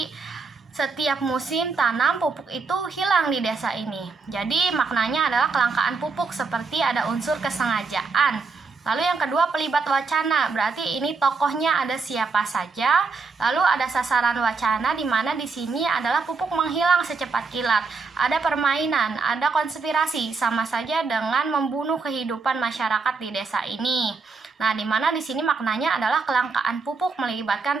setiap musim tanam pupuk itu hilang di desa ini. Jadi maknanya adalah kelangkaan pupuk, seperti ada unsur kesengajaan. Lalu yang kedua pelibat wacana, berarti ini tokohnya ada siapa saja. Lalu ada sasaran wacana, di mana di sini adalah pupuk menghilang secepat kilat. Ada permainan, ada konspirasi, sama saja dengan membunuh kehidupan masyarakat di desa ini. Nah, di mana di sini maknanya adalah kelangkaan pupuk melibatkan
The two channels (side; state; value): left; quieter; 4.5 dB